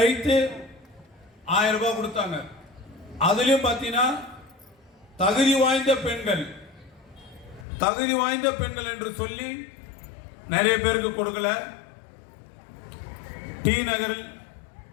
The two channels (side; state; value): right; drops out; at 7.7 s